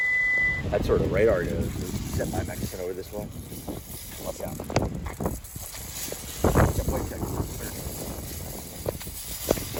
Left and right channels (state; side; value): identical; both; correlation 1.00